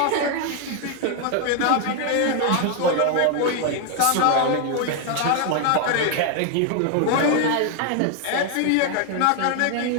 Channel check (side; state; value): both; different; correlation 0.01